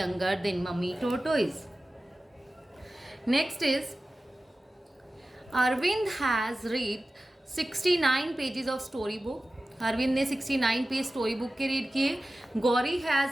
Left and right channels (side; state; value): both; normal; correlation 0.95